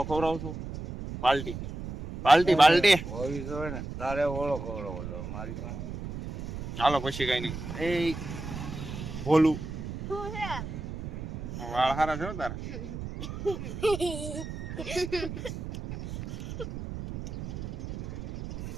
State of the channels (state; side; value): noise; right; rumble, 7 dB below the sound